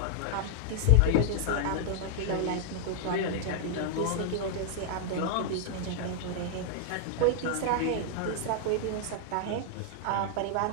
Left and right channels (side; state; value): both; different; correlation 0.00